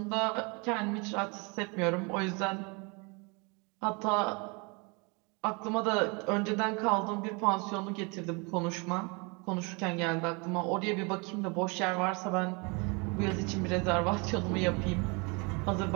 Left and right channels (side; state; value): left; quieter; 30.7 dB